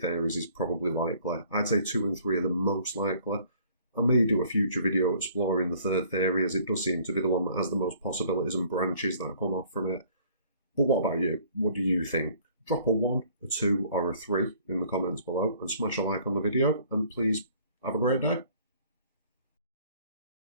theories is probably likely. I'd say 2 and 3 are the most likely. I may do a future video exploring the 3rd theory, as it does seem to be the one that has the most possibilities and branches that come off from it. But what about you? What do you think? Drop a 1, a 2, or a 3 in the comments below, and smash a like on the video, and please have a great day.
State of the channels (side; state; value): both; inverted; correlation -0.56